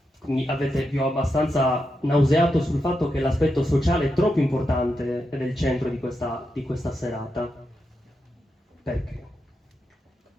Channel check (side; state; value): both; normal; correlation 0.86